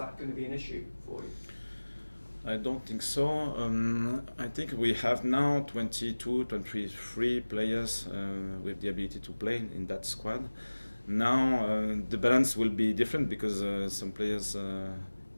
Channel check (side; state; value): both; inverted; correlation -1.00